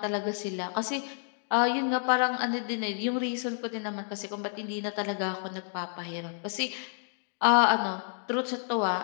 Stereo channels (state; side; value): silent; right; 58 dB below the other